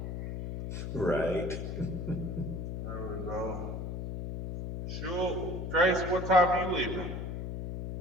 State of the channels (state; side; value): noise; left; hum, 5 dB below the sound